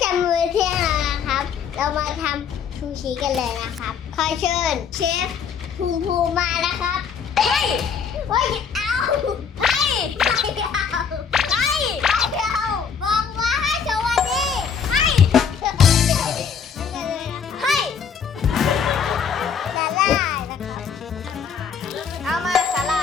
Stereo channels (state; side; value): quieter; right; 6.8 dB